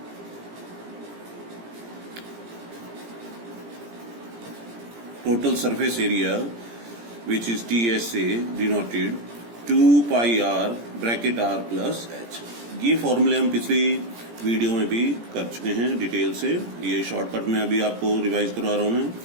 Total surface area which is TSA denoted 2 pi r bracket r plus h. ये फॉर्मूले हम पिछली वीडियो में भी कर चुके हैं डिटेल से. ये शॉर्टकट में अभी आपको रिवाइज करवा रहा हूं मैं.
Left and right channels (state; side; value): late; left; 17 ms